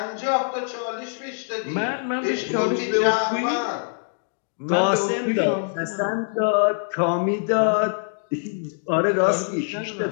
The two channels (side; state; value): right; silent; digital silence